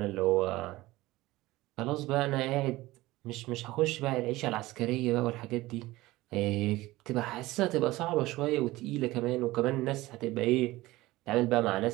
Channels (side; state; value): left; quieter; 18.7 dB